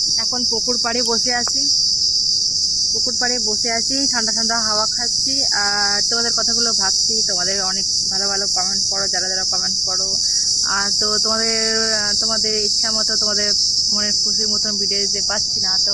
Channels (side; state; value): left; noise; rumble, 18 dB below the sound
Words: এখন পুকুর পাড়ে বসে আছি, ঠান্ডা ঠান্ডা হাওয়া খাচ্ছি আর তোমাদের কথাগুলো ভাবছি। তোমাদের অনেক ভালো ভালো কমেন্ট করো, যারা যারা কমেন্ট করো। আর তো তোমাদের ইচ্ছা মতো, তোমাদের মনের খুশির মতন ভিডিও দিতে পারছি না, তো